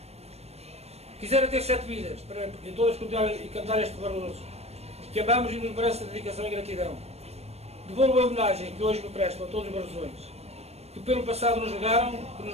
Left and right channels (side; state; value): left; late; 0.31 ms